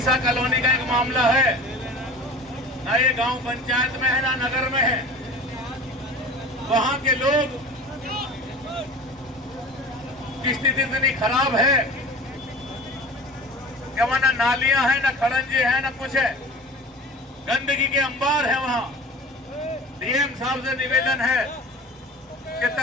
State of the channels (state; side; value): normal; both; correlation 0.39